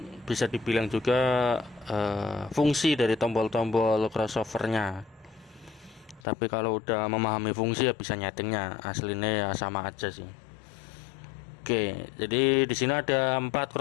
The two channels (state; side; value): drops out; right; at 6.2 s